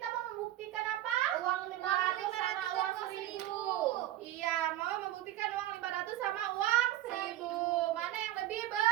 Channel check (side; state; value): left; quieter; 14.1 dB